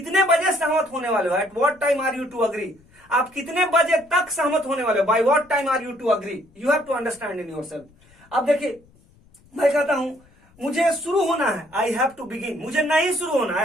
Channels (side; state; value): left; noise; rumble, 30 dB below the sound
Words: बजे सहमत होने वाले हो? At what time are you to agree. आप कितने बजे तक सहमत होने वाले हो? By what time are you to agree. You have to understand in yourself. अब देखिए, मैं कहता हूं मुझे शुरू होना है, आई हैव टू बिगिन। मुझे नहीं शुरू होना,